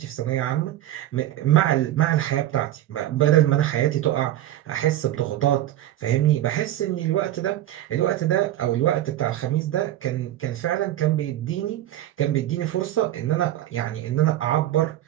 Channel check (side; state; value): left; quieter; 13.3 dB